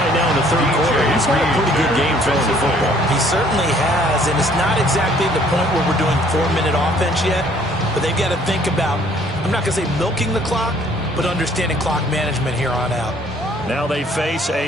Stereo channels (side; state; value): both; normal; correlation 0.60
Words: now in the 3rd quarter, he's had a pretty good game throwing the football. He certainly has, and it's not exactly the point where we're doing 4-minute offense yet, but they've got to think about, I'm not going to say milking the clock, but understanding clock management here on out. Now they face